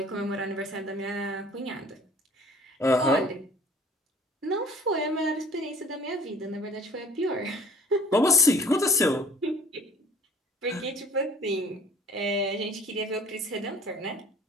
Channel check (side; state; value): both; normal; correlation 0.50